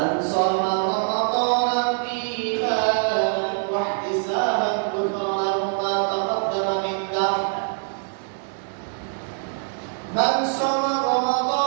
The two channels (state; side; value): silent; left; 63 dB below the other